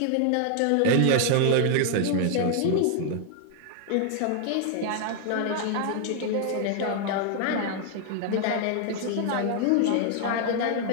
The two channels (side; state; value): both; different; correlation 0.00